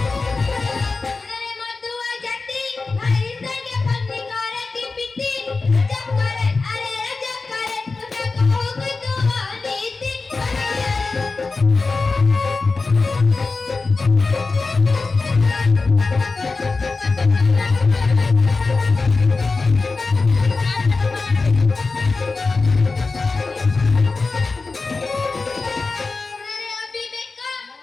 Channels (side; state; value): right; quieter; 3.9 dB